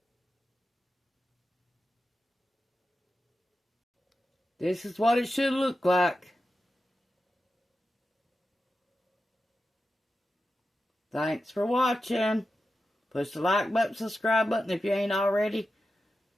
This is what it should look like. Thanks for watching. Push the like button, subscribe button if you ain't already.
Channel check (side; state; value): both; normal; correlation 0.91